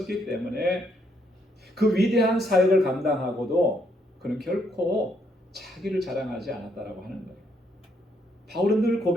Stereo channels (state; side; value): normal; both; correlation 0.73